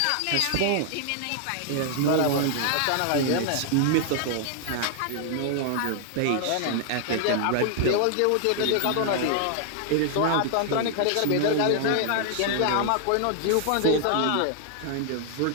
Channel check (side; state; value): both; different; correlation 0.00